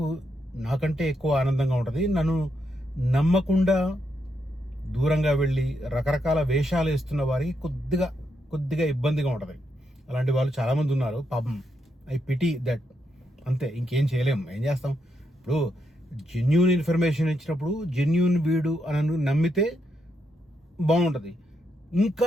నాకంటే ఎక్కువ ఆనందంగా ఉంటుంది. నన్ను నమ్మకుండా దూరంగా వెళ్ళి రకరకాల వేషాలు వేస్తున్న వారికి కొద్దిగా ఇబ్బందిగా ఉంటుంది. అలాంటి వాళ్ళు చాలామంది ఉన్నారు. పాపం, ఐ పిటీ దట్. అంతే, ఇంకేం చేయలేం. ఏం చేస్తాం? ఇప్పుడు జెన్యూన్ ఇన్ఫర్మేషన్ ఇచ్చినప్పుడు జెన్యూన్ వీడు అని నమ్మితే బాగుంటుంది.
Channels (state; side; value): normal; both; correlation 0.80